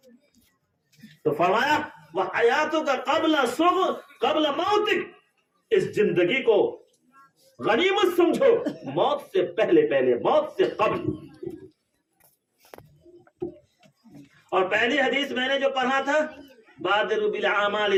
تو فرمایا وحیاتک قبل موتک، اس زندگی کو غنیمت سمجھو موت سے پہلے، موت سے قبل. اور پہلی حدیث میں نے جو پڑھا تھا بادروا بالاعمال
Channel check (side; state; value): both; identical; correlation 1.00